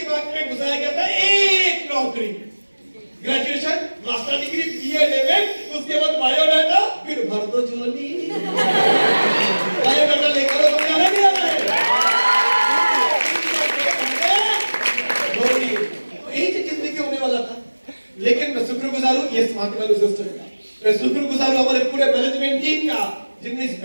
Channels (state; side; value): inverted; both; correlation -1.00